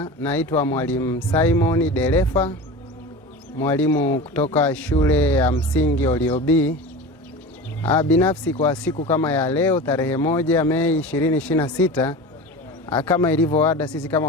Naitwa Mwalimu Simon Delefa, mwalimu kutoka shule ya msingi Oliobi. Binafsi kwa siku kama ya leo tarehe 1 Mei 2026, kama ilivyo ada, sisi kama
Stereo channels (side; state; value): both; normal; correlation 0.31